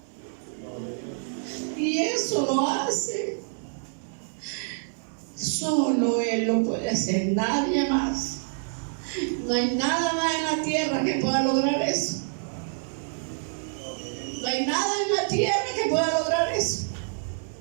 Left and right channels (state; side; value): silent; left; digital silence